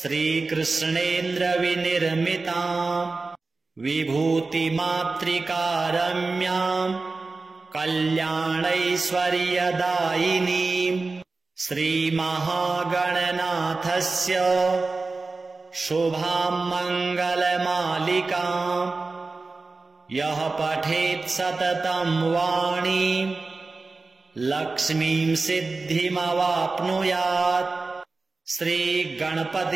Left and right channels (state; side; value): quieter; left; 3.7 dB